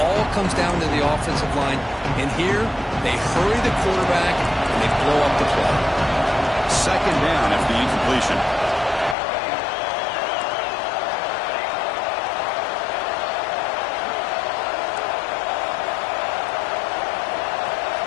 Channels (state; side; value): drops out; right; at 9.2 s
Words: comes down to the offensive line. And here, they hurry the quarterback, and they blow up the play. Second down after the incompletion.